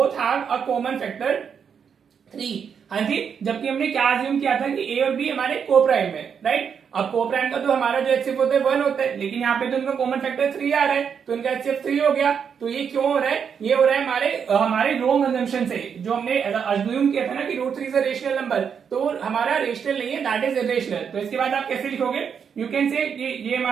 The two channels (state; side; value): quieter; left; 7.1 dB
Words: have a common factor 3। हाँ जी, जबकि हमने क्या अज्यूम किया था कि a और b हमारे को प्राइम है, राइट? अब को प्राइम का तो हमारा जो एचसीएफ होता है 1 होता है, लेकिन यहाँ पे तो उनका कॉमन फैक्टर 3 आ रहा है, तो इनका एचसीएफ 3 हो गया। तो ये क्यों हो रहा है, ये हो रहा है हमारे रॉन्ग अजम्पशन से, जो हमने अज्यूम किया था ना कि √3 इज अ रेशनल नंबर, तो हमारा रेशनल नहीं है, दैट इज इरेशनल। तो इसके बाद आप कैसे लिखोगे, यू कैन से ये